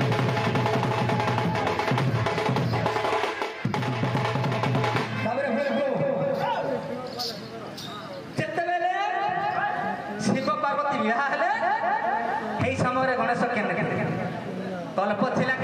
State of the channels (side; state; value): both; identical; correlation 1.00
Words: ତାପରେ ଯେତେବେଳେ ଶିବ ପାର୍ବତୀ ବିବାହ ହେଲେ ସେଇ ସମୟରେ ଗଣେଶ କେନ୍ତେ କଳ୍ପ ଥିଲା